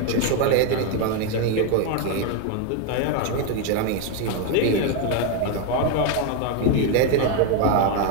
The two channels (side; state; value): both; different; correlation 0.01